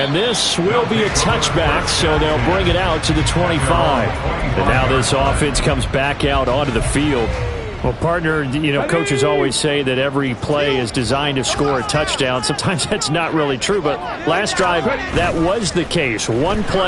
this will be a touchback, so they'll bring it out to the 25. And now this offense comes back out onto the field. Well, partner, you know, coaches always say that every play is designed to score a touchdown. Sometimes that's not really true, but last drive, that was the case. One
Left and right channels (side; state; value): both; identical; correlation 1.00